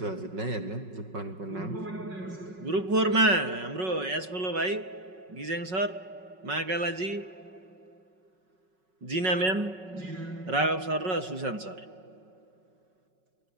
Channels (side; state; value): left; late; 5.4 ms